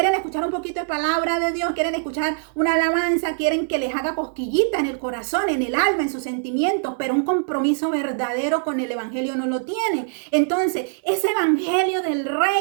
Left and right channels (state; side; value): silent; left; digital silence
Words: escuchar un poquito de palabra de Dios, quieren escuchar una alabanza, quieren que les haga cosquillita en el corazón, en el alma, en sus sentimientos, pero un compromiso verdadero con el evangelio no lo tienen? Entonces, ese evangelio del